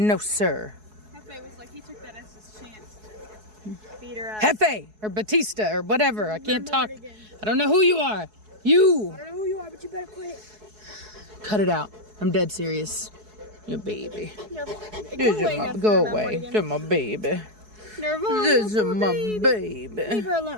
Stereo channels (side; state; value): left; late; 4.7 ms